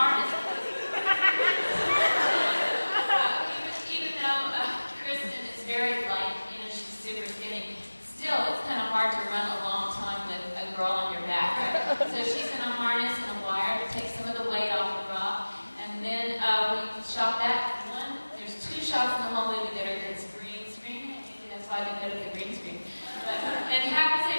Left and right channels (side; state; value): both; inverted; correlation -1.00